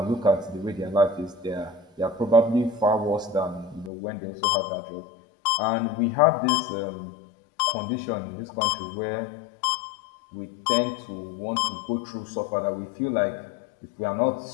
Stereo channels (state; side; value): drops out; right; at 3.9 s